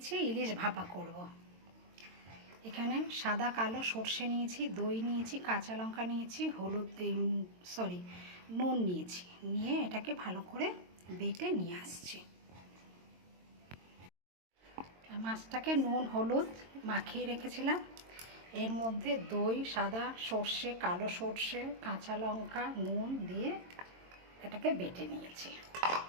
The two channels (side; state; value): left; late; 22 ms